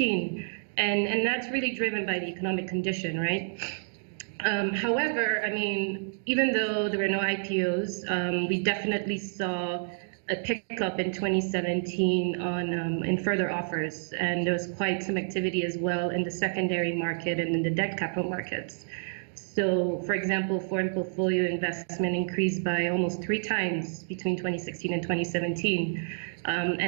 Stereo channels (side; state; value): left; silent; digital silence